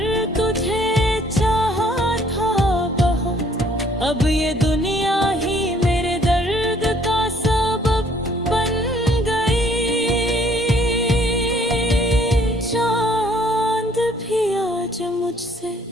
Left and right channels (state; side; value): normal; both; correlation 0.61